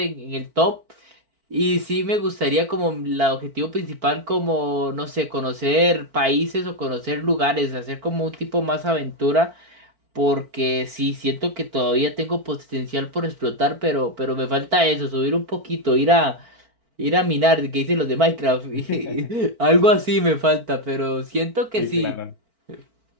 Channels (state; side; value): late; left; 4.5 ms